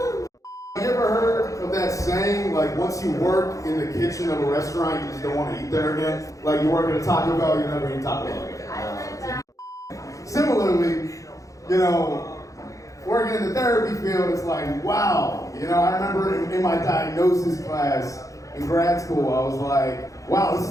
You ever heard of that saying, like once you work in the kitchen of a restaurant, you just don't want to eat there again? Like you work at a Taco Bell, you never eat Taco Bell again. Similarly, working in the therapy field, it's like, wow. I remember in my diagnosis class in grad school, I was like, wow, this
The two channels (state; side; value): late; right; 0.16 ms